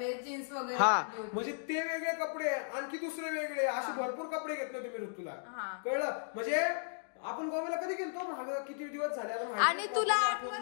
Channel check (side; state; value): right; silent; digital silence